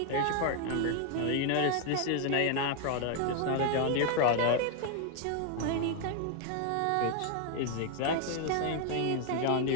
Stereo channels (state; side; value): different; both; correlation 0.00